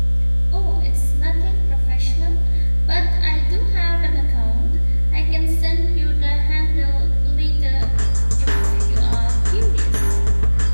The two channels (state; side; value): inverted; both; correlation -1.00